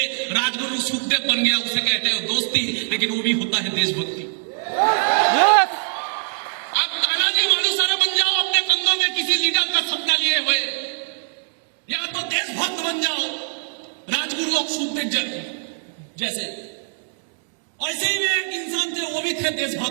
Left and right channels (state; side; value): silent; left; digital silence